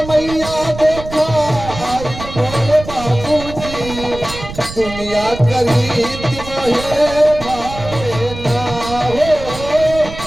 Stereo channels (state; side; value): noise; right; rumble, 11 dB below the sound